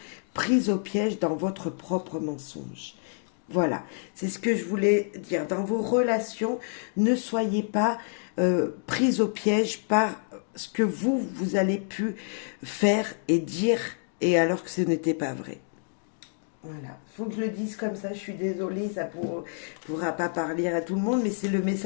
prise au piège dans votre propre mensonge. Voilà, c'est ce que je voulais dire. Dans vos relations, ne soyez pas prise au piège par ce que vous allez pu faire et dire, et alors que ce n'était pas vrai. Voilà, faut que je le dise comme ça, je suis désolée, ça pourra pas parler à tout le monde, mais c'est le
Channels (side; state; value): right; silent; digital silence